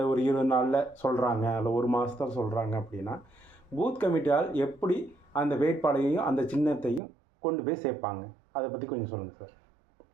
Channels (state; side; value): drops out; left; at 7.0 s